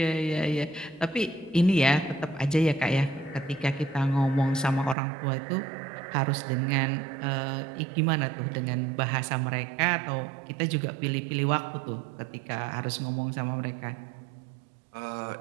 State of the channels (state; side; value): drops out; left; at 5.0 s